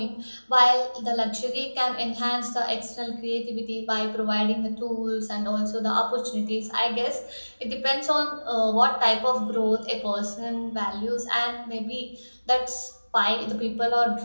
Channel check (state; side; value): inverted; both; correlation -1.00